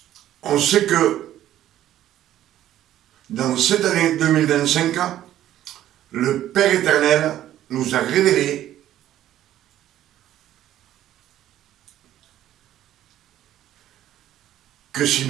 On sait que dans cette année 2025, le Père éternel nous a révélé que si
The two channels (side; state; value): left; quieter; 12.5 dB